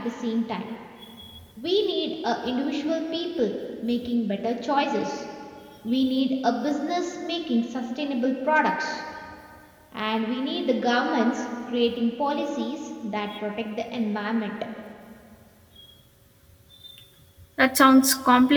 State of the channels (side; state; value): both; identical; correlation 1.00